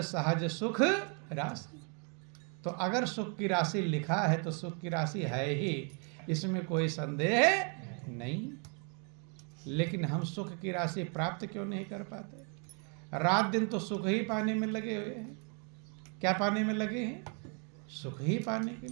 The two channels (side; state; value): left; quieter; 38.0 dB